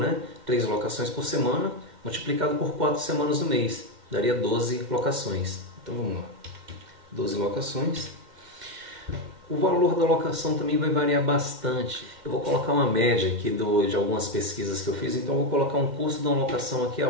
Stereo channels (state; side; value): late; left; 2.1 ms